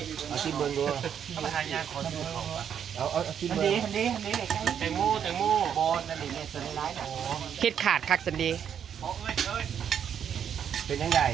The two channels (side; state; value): left; quieter; 8.5 dB